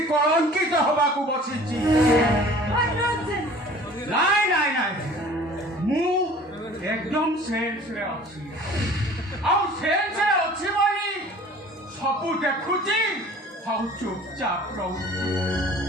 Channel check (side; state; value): both; normal; correlation 0.47